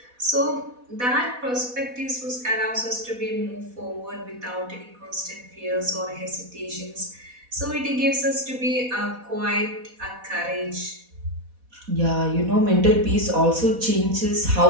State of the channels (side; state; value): left; late; 4.1 ms